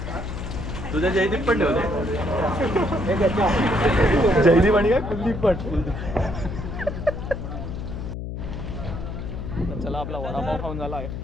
तुझ्या जयदीप पण ठेवले. जयदीप आणि काय कुलदीप पण. चला आपला वडापाव खाऊन झाला आहे.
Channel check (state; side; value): noise; left; hum, 6 dB below the sound